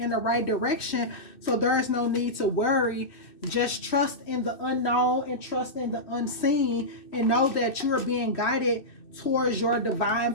the right direction. So there is no need to worry. Just trust in the unknown and trust in the unseen and know that you are being guided towards your divine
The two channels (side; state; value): right; late; 2.6 ms